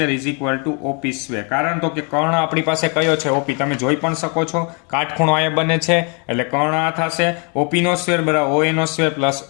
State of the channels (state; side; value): quieter; right; 35.8 dB